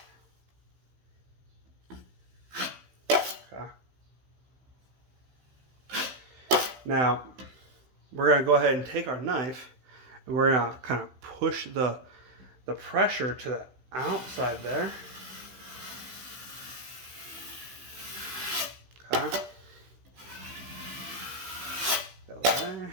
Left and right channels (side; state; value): left; late; 15 ms